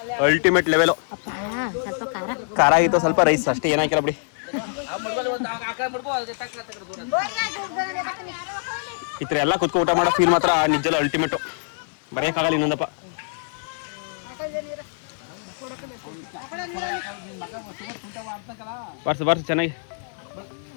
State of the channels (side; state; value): right; silent; digital silence